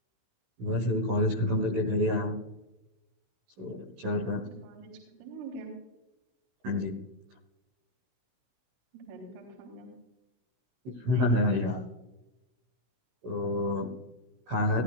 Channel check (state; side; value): late; left; 16 ms